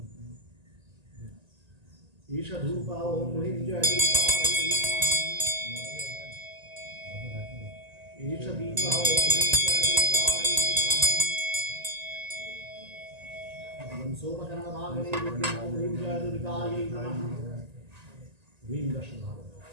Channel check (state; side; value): late; left; 1.9 ms